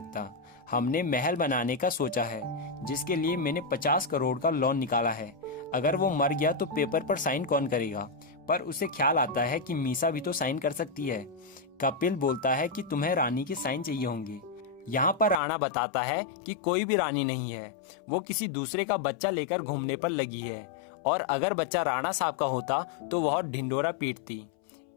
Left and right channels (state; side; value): drops out; right; at 15.4 s